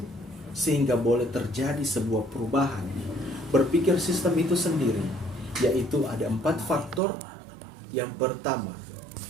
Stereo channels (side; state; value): left; drops out; at 7.0 s